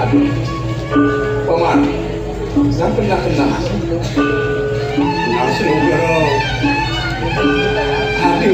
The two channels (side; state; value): both; identical; correlation 1.00